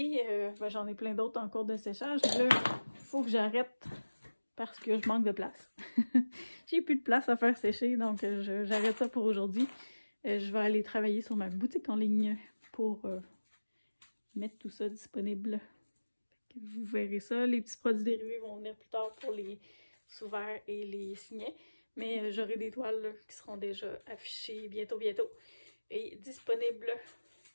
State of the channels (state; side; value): inverted; both; correlation -1.00